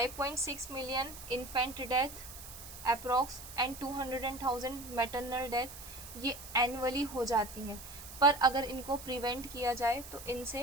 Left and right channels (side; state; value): right; noise; hiss, 13 dB below the sound